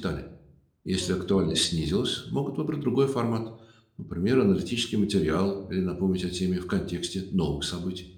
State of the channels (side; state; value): both; identical; correlation 1.00